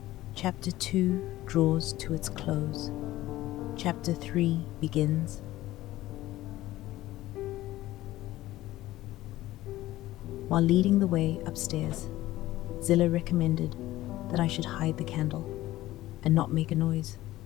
Chapter 2 draws to its close. Chapter 3 begins. While leading the way upstairs, Zillah recommended that I should hide the candle and not make a noise,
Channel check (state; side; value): quieter; right; 16.1 dB